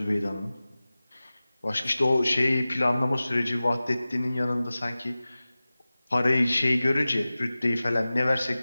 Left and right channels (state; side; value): inverted; both; correlation -0.97